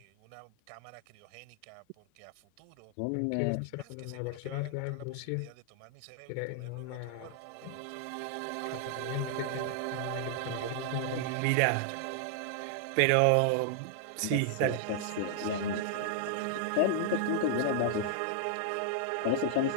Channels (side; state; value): both; different; correlation -0.01